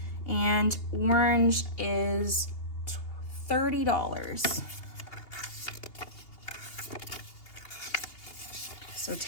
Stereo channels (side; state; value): right; late; 2.8 ms